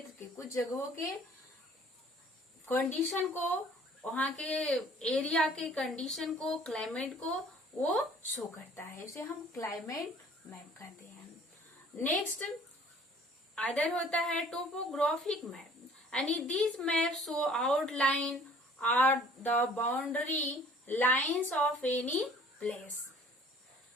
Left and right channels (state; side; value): normal; both; correlation 0.53